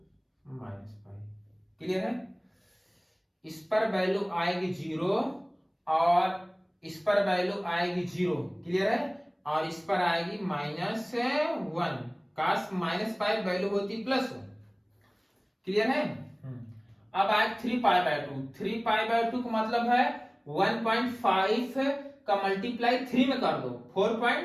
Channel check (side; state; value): both; identical; correlation 1.00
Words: -π, क्लियर है। इस पर वैल्यू आएगी 0 और इस पर वैल्यू आएगी 0, क्लियर है। और इस पर आएगी -1, काश -π वैल्यू होती +1, क्लियर है। अब आए 3π/2, 3π/2 का मतलब है 1.5 का मल्टीप्लाई 3 में कर दो,